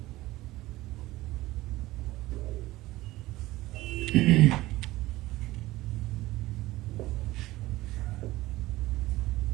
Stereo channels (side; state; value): left; quieter; 17.9 dB